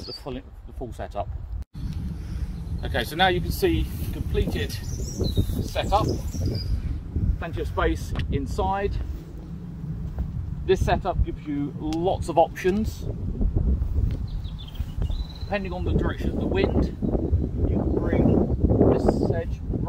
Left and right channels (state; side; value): identical; both; correlation 1.00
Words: the full setup. Okay, so now you can see the completed setup. Plenty of space inside. This setup gives you lots of options. Depending on the direction of the wind, you can bring this edge